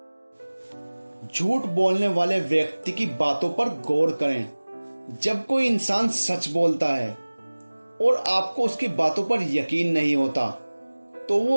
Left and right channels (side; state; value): both; inverted; correlation -1.00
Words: झूठ बोलने वाले व्यक्ति की बातों पर गौर करें। जब कोई इंसान सच बोलता है और आपको उसकी बातों पर यकीन नहीं होता, तो